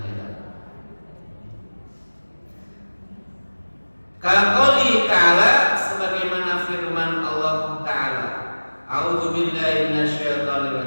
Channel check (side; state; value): both; inverted; correlation -1.00